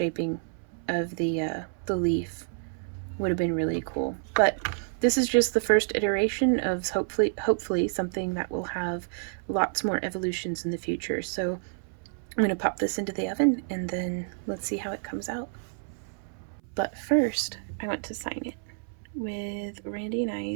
of the leaf would have been really cool. But this is just the first iteration of hopefully something that will have lots more evolutions in the future. So I'm going to pop this into the oven and then let's see how it comes out. But first, I want to sign it with Randy and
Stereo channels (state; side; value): silent; left; 59 dB below the other